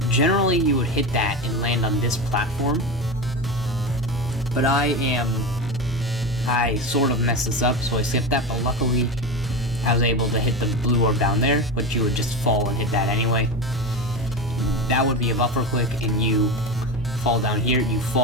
Generally you would hit that and land on this platform, but I sort of messed this up, so I skipped that, but luckily I was able to hit the blue orb down there, but you would just fall and hit that anyway. That would be a buffer click, and you fall down here, you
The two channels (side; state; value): both; normal; correlation 0.22